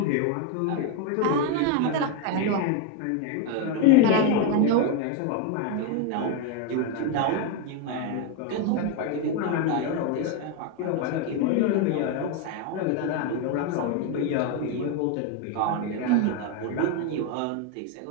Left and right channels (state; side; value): different; both; correlation 0.02